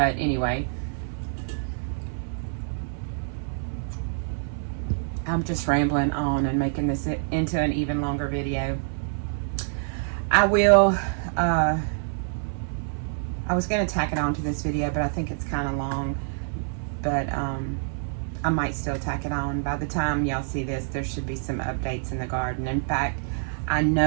anyway, I'm just rambling on and making this into an even longer video. I was going to tack it on to this video, but I think it's kind of long. But I might still tack it on. By the time y'all see this, there should be some updates in the garden. In fact, I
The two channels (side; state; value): left; silent; 61 dB below the other